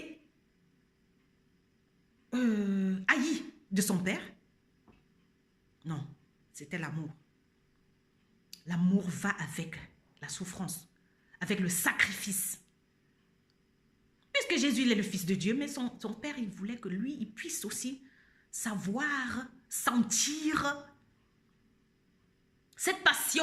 haï de son Père? Non, c'était l'amour. L'amour va avec la souffrance, avec le sacrifice. Puisque Jésus il est le Fils de Dieu, mais son Père, il voulait que lui, il puisse aussi savoir, sentir cette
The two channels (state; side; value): identical; both; correlation 1.00